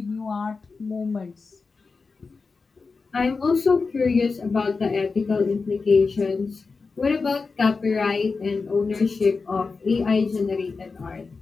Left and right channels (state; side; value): quieter; right; 4.4 dB